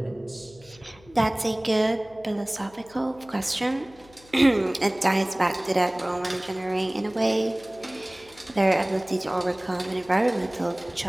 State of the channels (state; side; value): noise; left; hum, 25 dB below the sound